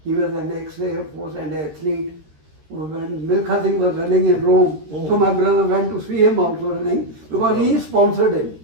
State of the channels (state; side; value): late; left; 13 ms